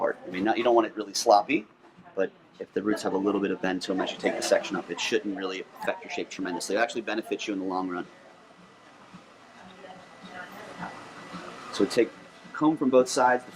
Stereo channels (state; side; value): identical; both; correlation 1.00